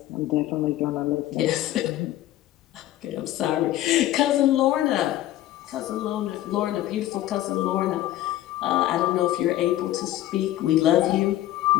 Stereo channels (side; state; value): right; quieter; 14.2 dB